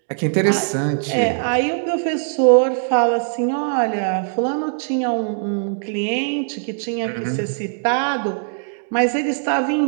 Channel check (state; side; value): silent; left; digital silence